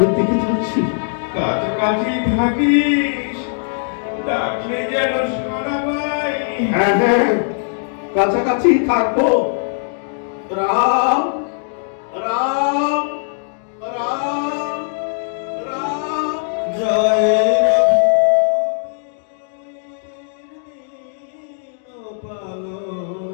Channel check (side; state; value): right; silent; digital silence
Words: দিকে যাচ্ছি। কাছাকাছি থাকিস, ডাকলে যেন সারা পাই। হ্যাঁ হ্যাঁ, কাছাকাছি থাকবো। রাম রাম রাম রাম। জয়